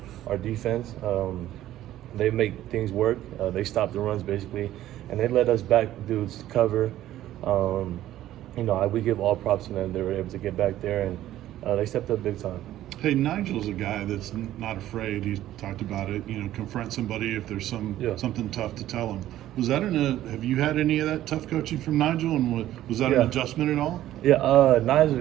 defense. They make things work. They stop the runs, basically, and they let us back dudes cover. We give all props to them. They were able to get back there, and they stepped up big time. Hey, Nigel's a guy that's not afraid. He's talked about it. Confront somebody if there's something tough to tell him. Was that have you had any of that tough coaching from Nigel, and was that an adjustment at all? Yeah,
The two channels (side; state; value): left; quieter; 13.5 dB